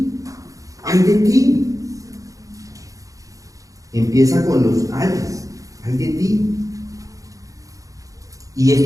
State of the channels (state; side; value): late; left; 0.16 ms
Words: Empieza con los ayes, ay de ti. Y